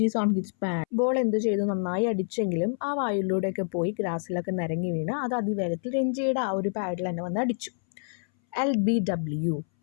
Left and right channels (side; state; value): right; silent; 60 dB below the other